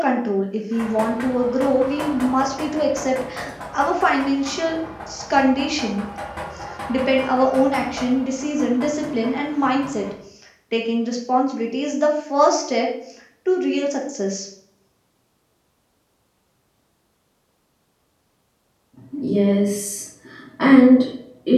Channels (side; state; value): both; identical; correlation 1.00